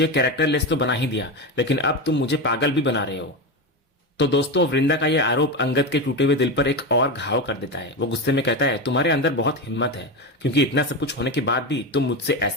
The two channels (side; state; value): both; normal; correlation 0.17